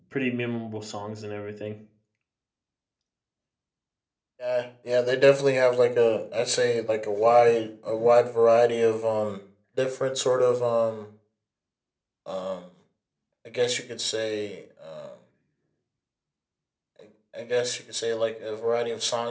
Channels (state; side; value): identical; both; correlation 1.00